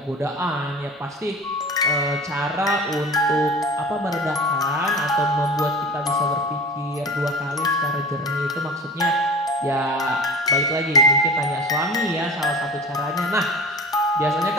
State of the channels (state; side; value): normal; both; correlation 0.35